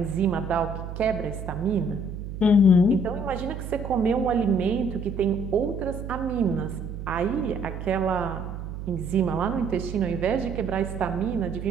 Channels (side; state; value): right; noise; hum, 8 dB below the sound